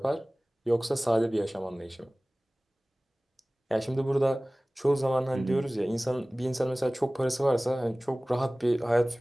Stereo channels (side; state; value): both; normal; correlation 0.98